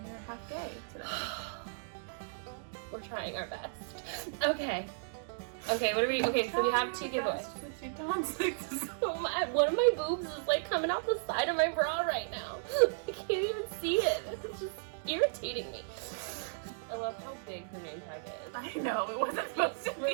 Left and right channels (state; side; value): silent; left; digital silence